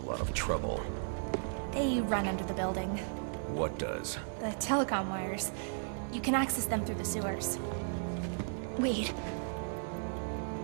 of trouble. They run under the building. What does? The telecom wires. You can access them through the sewers. Wait.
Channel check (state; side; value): silent; left; 54 dB below the other